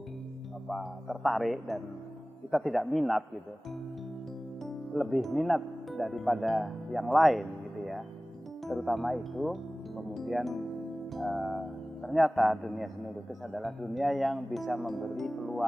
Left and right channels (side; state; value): both; normal; correlation 0.98